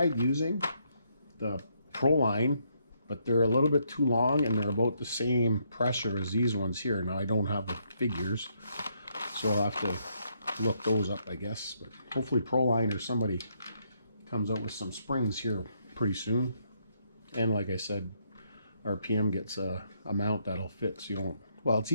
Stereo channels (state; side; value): inverted; both; correlation -0.74